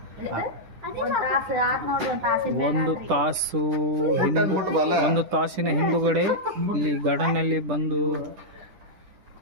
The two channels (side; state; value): left; late; 10 ms